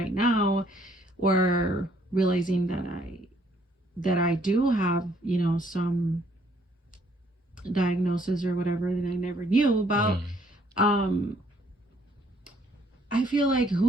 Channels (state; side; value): normal; both; correlation 0.65